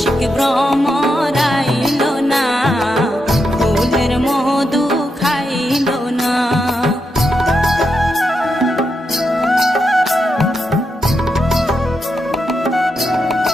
ভ্রমর আইল না, ফুলের মধু খাইল না।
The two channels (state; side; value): normal; both; correlation 0.84